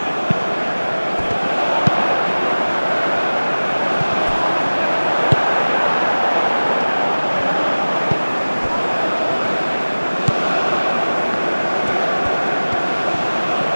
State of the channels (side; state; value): both; inverted; correlation -1.00